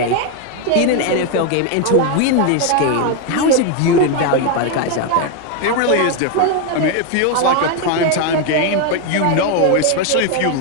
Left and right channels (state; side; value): different; both; correlation 0.01